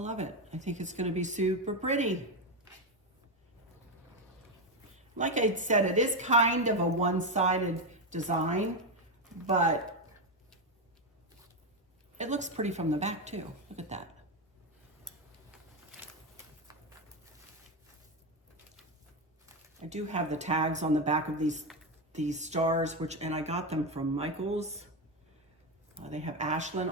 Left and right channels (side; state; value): both; normal; correlation 0.10